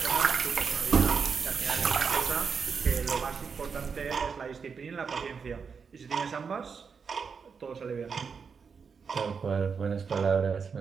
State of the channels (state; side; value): quieter; left; 5.8 dB